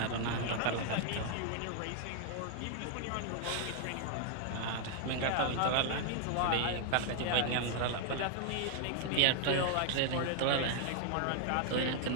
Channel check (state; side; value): different; both; correlation 0.00